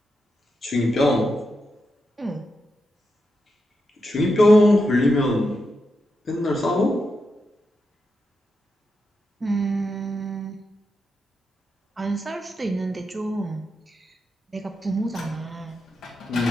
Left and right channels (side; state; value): both; normal; correlation 0.86